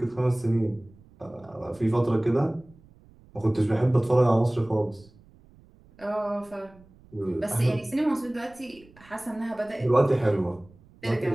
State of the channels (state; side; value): noise; right; rumble, 26 dB below the sound